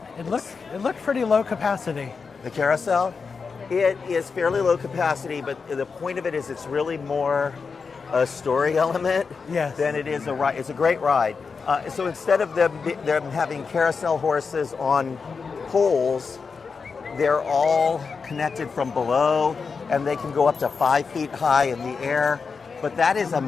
It looked pretty low capacity. The carousel, it is fairly low capacity, but the point of it is it's really more a story element than it is a ride. It's a great ride. So instead of them having carousel horses on poles, they're all connected from below, and they can go up to 5 feet high in the air. But that is a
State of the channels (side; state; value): right; quieter; 5.1 dB